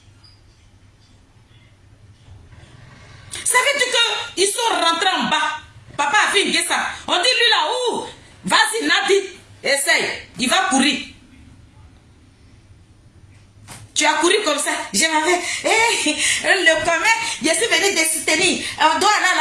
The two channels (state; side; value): identical; both; correlation 1.00